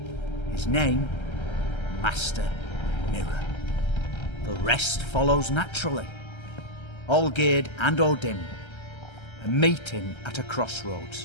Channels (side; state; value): right; late; 1.3 ms